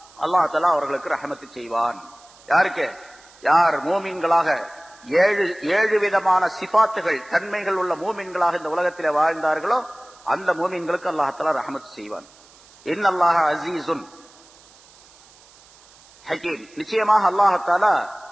அல்லாஹ்தாலா அவர்களுக்கு ரஹமத்து செய்வான். யாருக்கு? யார் மூமின்களாக ஏழு விதமான சிபாத்துகள் தன்மைகள் உள்ள மூமின்களாக இந்த உலகத்தில் வாழ்ந்தார்களோ அந்த மூமின்களுக்கு அல்லாஹ்தாலா ரஹமத்து செய்வான். இன்னல்லாஹ அஸீஸுன் ஹகீம், நிச்சயமாக அல்லாஹ்தாலா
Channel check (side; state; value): right; noise; hiss, 26 dB below the sound